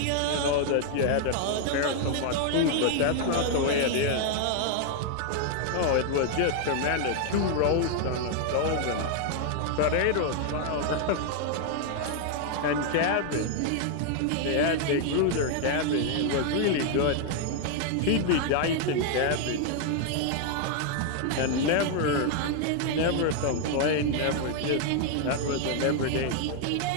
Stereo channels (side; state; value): both; different; correlation 0.00